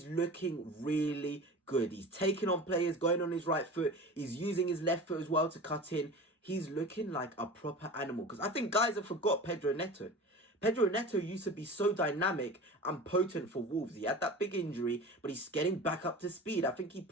looking really good. He's taking on players, going on his right foot. He's using his left foot as well to cut in. He's looking like a proper animal. Because I think guys have forgot Pedro Neto. Pedro Neto used to be so dynamic and potent for Wolves. He had that big injury, but he's getting back up to speed. I think he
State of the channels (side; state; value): both; normal; correlation 0.35